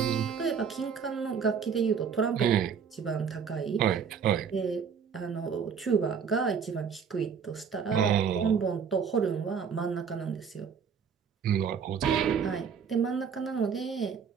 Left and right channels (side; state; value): left; quieter; 6.8 dB